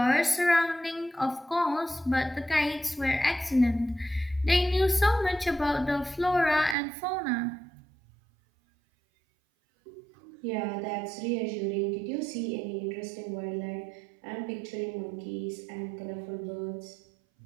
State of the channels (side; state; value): left; drops out; at 6.8 s